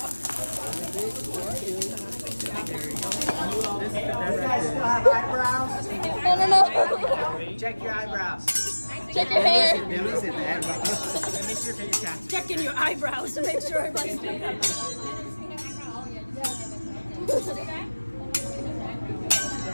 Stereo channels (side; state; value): both; inverted; correlation -1.00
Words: no Check your eyebrows. check your hair Listen, make sure your cat. Checking your eyebrows to make sure everybody's